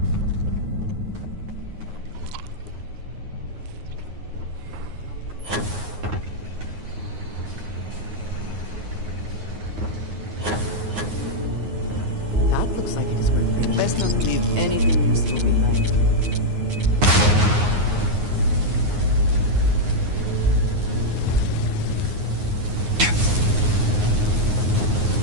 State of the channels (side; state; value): left; late; 9.6 ms